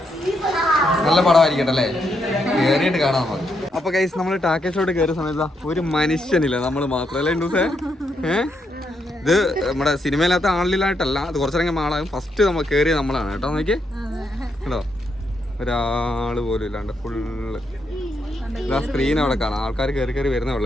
നല്ല പടമായിരിക്കട്ടെ അല്ലേ, കയറിയിട്ട് കാണാം നമുക്ക്. അപ്പൊ ഗൈസ് നമ്മൾ ടാക്കേഷോട് കയറിയ സമയത്ത് ഒരു മനുഷ്യനില്ല, നമ്മൾ മാത്രമല്ലേ ഇണ്ടൂസേ. ഇത് നമ്മുടെ സിനിമയിലത്തെ ആളിലായിട്ടല്ല, അത് കുറച്ചിറങ്ങി ആളാകും. ഫസ്റ്റ് നമ്മൾ കയറിയ നമ്മളാണ് കേട്ടോ. നോക്കിയേ കേട്ടോ, ഒരാള് പോലും ഇല്ലാണ്ട് ഫുള്ള് ഇതാ സ്ക്രീൻ അവിടെ കാണാം. ആൾക്കാർ കയറി വരുന്നേ ഉള്ളു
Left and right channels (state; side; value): normal; both; correlation 0.79